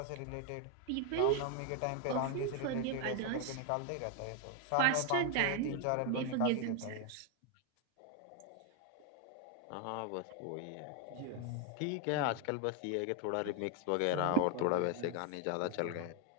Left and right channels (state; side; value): different; both; correlation 0.01